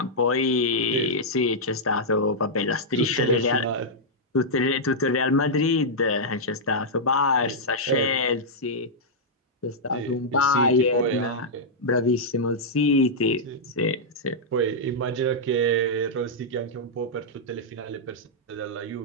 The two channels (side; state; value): both; normal; correlation -0.07